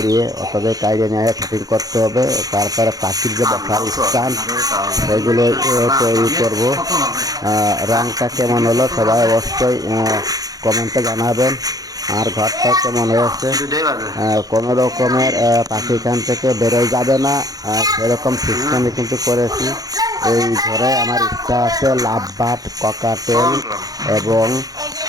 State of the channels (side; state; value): left; late; 0.18 ms